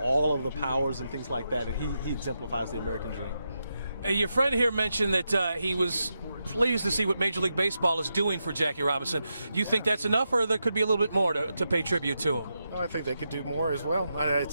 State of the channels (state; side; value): inverted; both; correlation -0.86